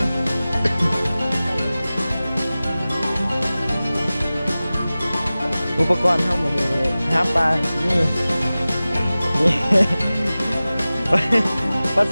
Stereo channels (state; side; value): inverted; both; correlation -0.97